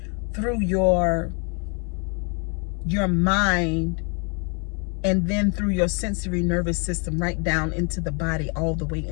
through your mind, and then through your sensory nervous system right down into the body, all the way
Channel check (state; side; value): quieter; right; 37.2 dB